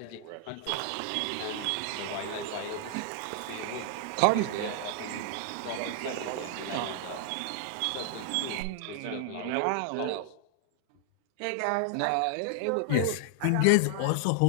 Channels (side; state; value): both; different; correlation 0.00